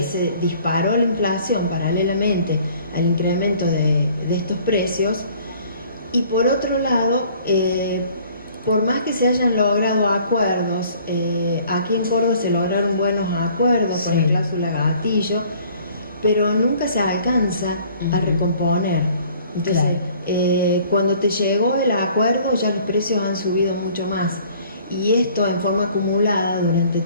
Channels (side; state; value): both; inverted; correlation -0.55